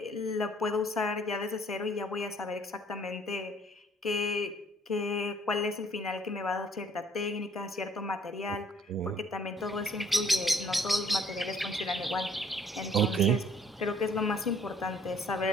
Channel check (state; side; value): normal; both; correlation 0.60